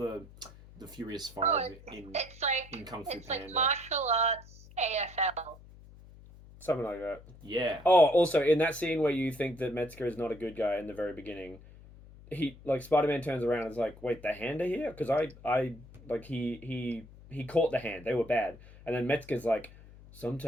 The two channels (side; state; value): left; noise; hum, 20 dB below the sound